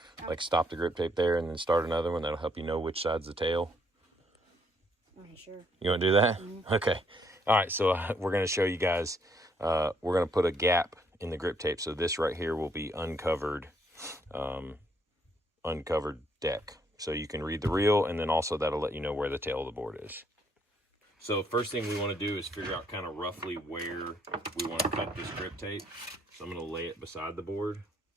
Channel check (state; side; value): normal; both; correlation 0.70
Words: No. Like stop the grip tape there and then start another one. That'll help you know which side's the tail. Okay, sure. You want to do that? Mm-hmm. Okay. All right, so we're going to show you guys. We're going to put a gap in the grip tape. So this right here will be uncovered deck. So you can read the reel, and then also that'll let you know where the tail of the board is. So first thing we want to do is figure out kind of roughly where we want to cut this grip tape. So I'm going to lay it beside the board.